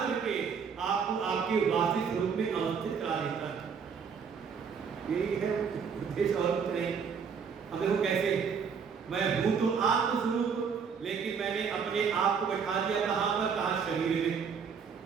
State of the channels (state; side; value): quieter; left; 6.3 dB